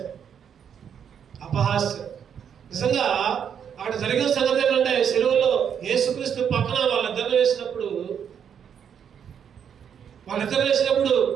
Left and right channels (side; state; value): left; quieter; 8.1 dB